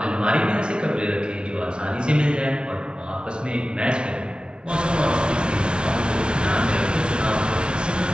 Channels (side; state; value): left; late; 0.056 ms